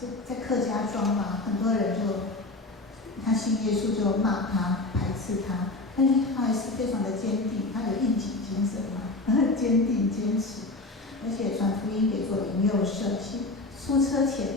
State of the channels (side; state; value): right; quieter; 3.1 dB